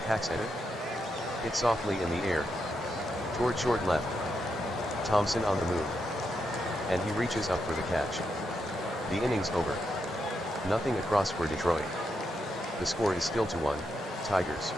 hacks at it. Hit softly in the air. Toward short left. Thompson on the move. And he reaches up for the catch. The inning's over. Nothing across for Detroit. The score is still 2-1, Tigers.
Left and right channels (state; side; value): normal; both; correlation 0.83